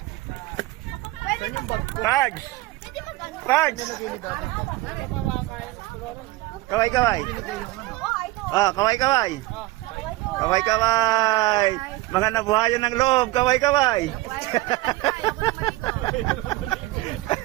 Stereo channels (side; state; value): left; quieter; 19.1 dB